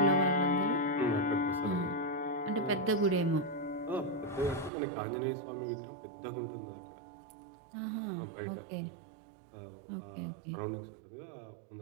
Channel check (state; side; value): drops out; left; at 4.7 s